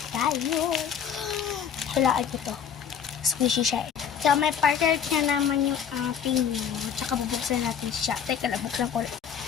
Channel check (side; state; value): right; quieter; 8.0 dB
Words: tayo. Hulaan ko to. Squishy siya. So, may partner niya naman yung ating tsaka bubuksan natin siya. Teka lang, buksan ko.